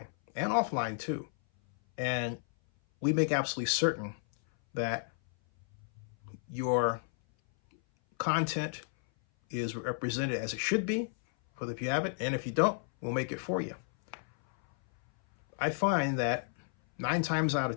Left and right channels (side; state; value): right; silent; 56 dB below the other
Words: and offline too. And we make absolutely certain that your content is represented as it should be for if you have it, and if you don't, we'll make it for you. I find that 9 times out of